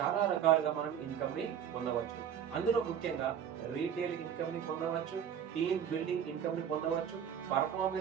రకాలుగా మనం ఇన్కమ్ ని పొందవచ్చు. అందులో ముఖ్యంగా రీటైల్ ఇన్కమ్ ని పొందవచ్చు, టీమ్ బిల్డింగ్ ఇన్కమ్ ని పొందవచ్చు,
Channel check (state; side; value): quieter; left; 8.8 dB